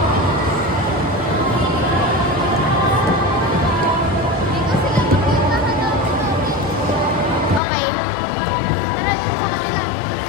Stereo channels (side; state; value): right; drops out; at 7.6 s